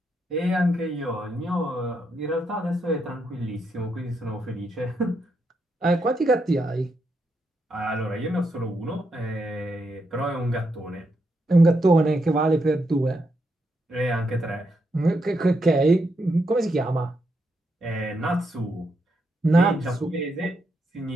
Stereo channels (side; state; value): both; normal; correlation 0.81